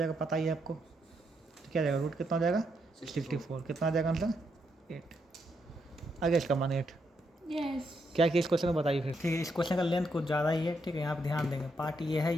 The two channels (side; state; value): both; normal; correlation 0.79